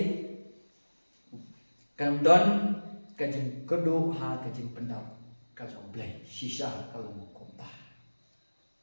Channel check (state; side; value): inverted; both; correlation -1.00